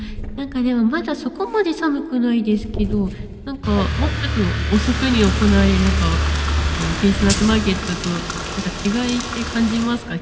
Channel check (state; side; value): identical; both; correlation 1.00